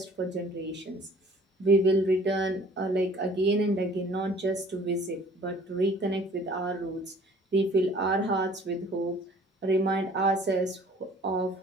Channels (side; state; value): both; normal; correlation 0.52